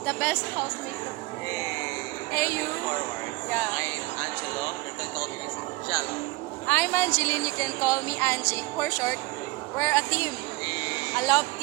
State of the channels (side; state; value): left; quieter; 21.5 dB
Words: the best housemate. Hey. Hey, you. Forward. Yeah. I'm Angelo. You can call me Jello. I'm Angeline. You can call me Angie. For short, we're a team. A love